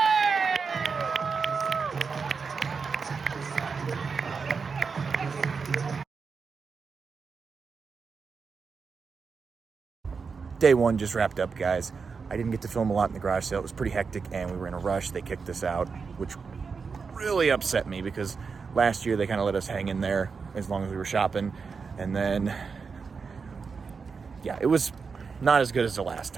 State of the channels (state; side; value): quieter; left; 5.2 dB